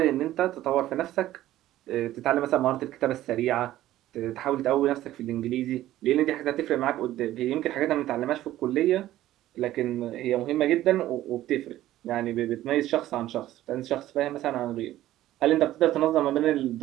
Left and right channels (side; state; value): left; quieter; 14.3 dB